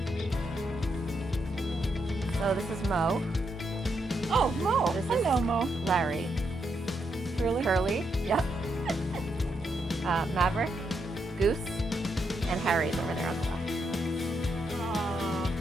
So this is Mo. Oh, Mo. This is- Hello, Mo. Larry. Really? Curly. Yep. Maverick. Goose. And Harry's over there on the left.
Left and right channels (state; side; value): normal; both; correlation 0.80